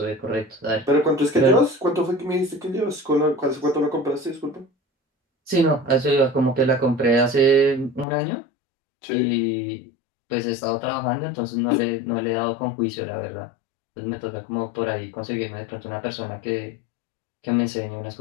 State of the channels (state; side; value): drops out; right; at 8.1 s